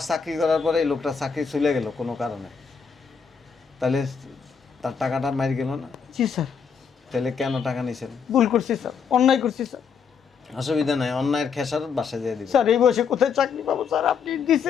চাকরি করার পরে এই লোকটা চাকরি চলে গেল কোনো কারণে, তাহলে তার টাকাটা মারি গেল না? জি স্যার। তাহলে কেন টাকা নিয়েছেন? ভুল করছি স্যার, অন্যায় করছি স্যার। অসুবিধা নাই, অন্যায়ের খেসারত বাসায় দিয়ে দিবেন। স্যার এই বয়সে কোথায় চাকরি পাবো স্যার? আপনি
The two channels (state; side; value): quieter; right; 6.3 dB